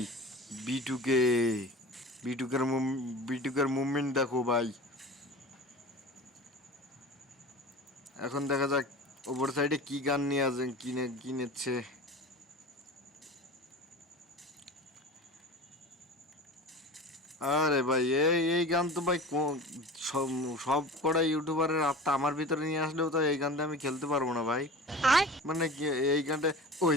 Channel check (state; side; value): normal; both; correlation 0.35